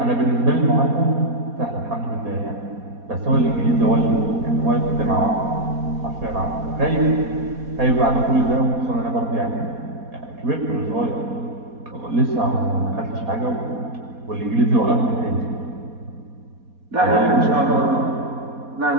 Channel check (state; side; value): late; left; 4.2 ms